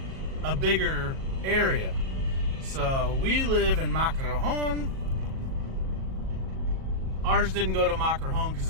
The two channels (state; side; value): late; left; 37 ms